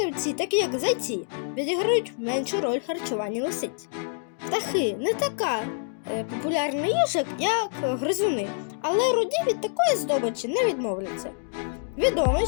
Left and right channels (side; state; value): right; silent; digital silence